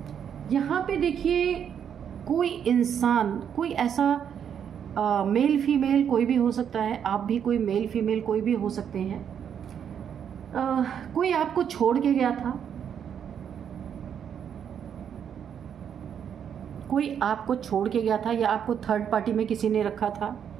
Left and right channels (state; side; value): quieter; left; 8.3 dB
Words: यहाँ पे देखिए, कोई इंसान, कोई ऐसा मेल फीमेल कोई भी हो सकता है। आप भी कोई मेल फीमेल कोई भी हो सकते हैं। कोई आपको छोड़ के गया था, कोई आपको छोड़ के गया था, या आपको थर्ड पार्टी में किसी ने रखा था,